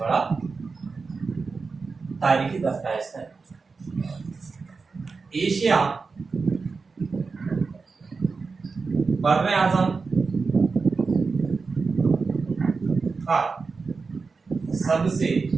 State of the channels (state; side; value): quieter; left; 4.5 dB